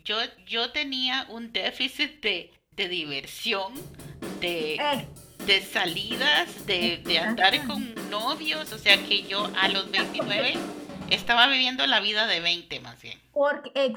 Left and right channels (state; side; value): identical; both; correlation 1.00